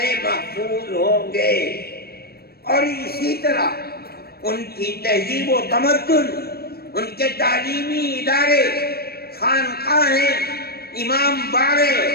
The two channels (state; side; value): late; right; 0.45 ms